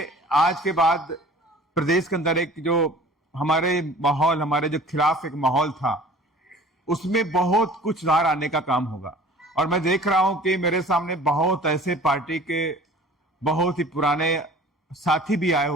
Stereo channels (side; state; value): both; normal; correlation 0.46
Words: आज के बाद प्रदेश के अंदर एक जो हमारे जो खिलाफ एक माहौल था, उसमें बहुत कुछ सुधार आने का काम होगा। और मैं देख रहा हूं कि मेरे सामने बहुत ऐसे पार्टी के बहुत ही पुराने साथी भी आए